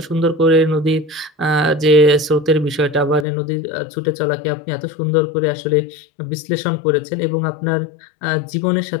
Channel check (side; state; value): right; drops out; at 3.2 s